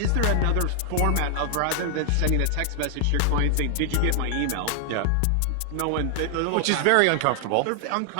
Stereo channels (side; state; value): both; different; correlation 0.00